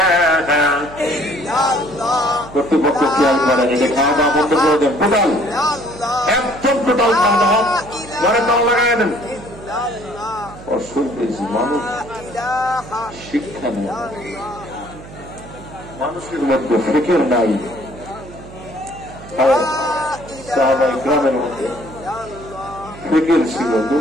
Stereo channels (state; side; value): noise; right; hum, 17 dB below the sound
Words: কর্তৃপক্ষ খেয়াল করে এটা খাওয়া দাওয়া বন্ধ করে দেন, টোটাল একদম টোটাল খাওয়া দাওয়া ঘরে তাল লাগাই দেন। অসুবিধা মানুষ শিক্ষা নেই, মানুষের মধ্যে ফিকির নাই। গ্রামের মধ্যে ফিকির ছিল,